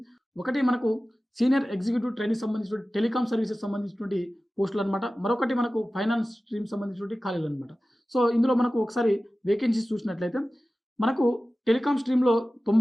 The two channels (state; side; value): normal; both; correlation 0.96